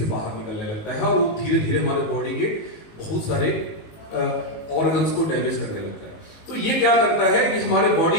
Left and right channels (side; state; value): right; late; 19 ms